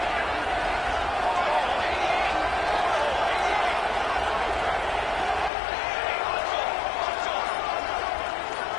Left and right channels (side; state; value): right; drops out; at 5.5 s